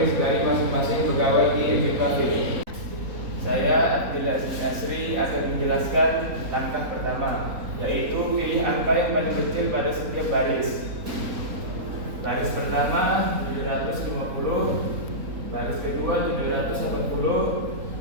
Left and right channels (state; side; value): late; left; 3.9 ms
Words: dari masing-masing pegawai di MB Cafe. Saya Abdul Aziz Asri akan menjelaskan langkah pertama, yaitu pilih angka yang paling kecil pada setiap baris. Baris pertama 750, baris kedua